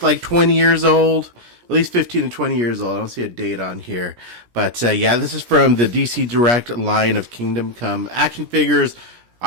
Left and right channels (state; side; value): late; left; 17 ms